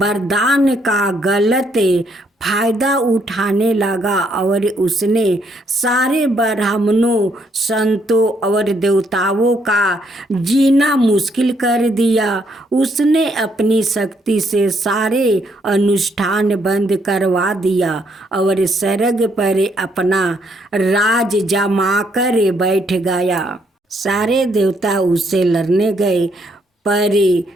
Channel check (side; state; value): both; normal; correlation 0.72